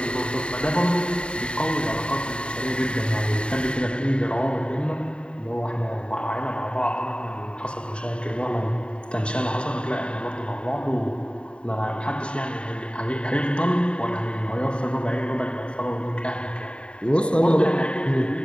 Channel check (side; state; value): right; late; 0.054 ms